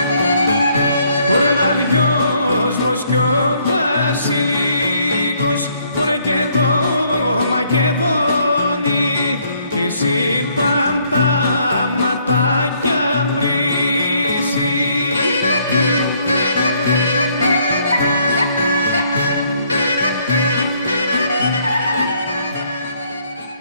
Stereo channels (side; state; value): both; inverted; correlation -0.67